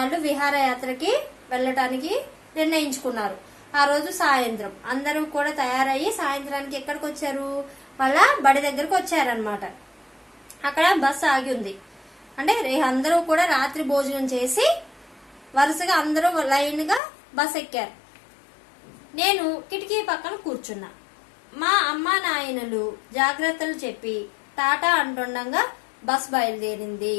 విహారయాత్రకి వెళ్ళటానికి నిర్ణయించుకున్నారు. ఆ రోజు సాయంత్రం అందరూ కూడా తయారయ్యి సాయంత్రానికి ఎక్కడికి వచ్చారు? వాళ్ళ బడి దగ్గరకు వచ్చారనమాట. అక్కడ బస్సు ఆగి ఉంది. అంటే అందరూ కూడా రాత్రి భోజనం చేసి వరుసగా అందరూ లైన్గా బస్ ఎక్కారు. నేను కిటికీ పక్కన కూర్చున్నా. మా అమ్మ నాయనలు జాగ్రత్తలు చెప్పి టాటా అంటుండగా బస్ బయలుదేరింది.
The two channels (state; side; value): drops out; right; at 17.0 s